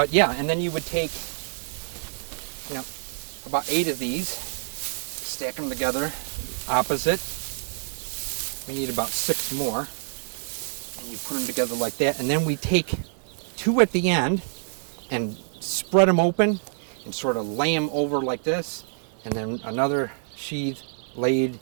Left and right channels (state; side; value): silent; left; 61 dB below the other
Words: yeah, and then you would take about 8 of these, stack them together, opposite. We need about 6 more. And you put them together like that, and then we take 2 at the end and spread them open and sort of lay them over like this, and then another sheath laid